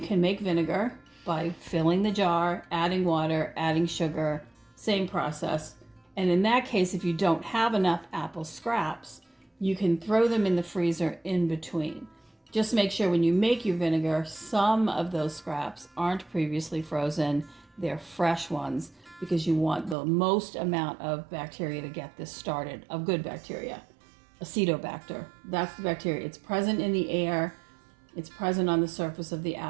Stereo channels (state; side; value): drops out; left; at 20.0 s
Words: can make vinegar by filling the jar, adding water, adding sugar, same process. And in that case, if you don't have enough apple scraps, you can throw them in the freezer in between. Just make sure when you make your vinegar, some of those scraps aren't previously frozen. They're fresh ones because you want the most amount of bacteria to get this started, of good bacteria. Acetobacter, that's the bacteria. It's present in the air. It's present on the surface of the